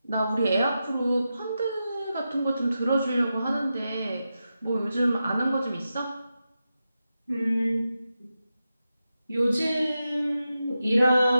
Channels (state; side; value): inverted; both; correlation -0.90